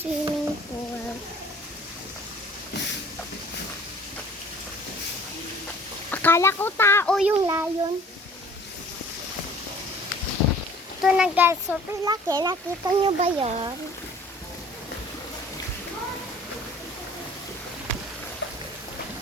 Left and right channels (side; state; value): both; normal; correlation 0.51